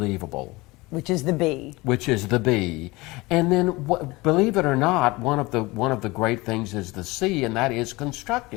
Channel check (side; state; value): right; quieter; 22.3 dB